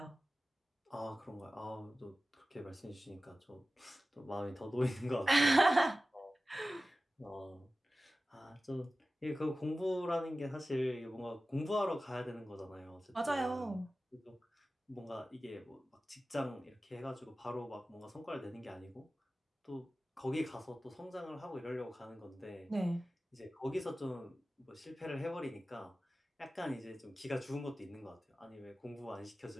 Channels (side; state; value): both; normal; correlation 0.95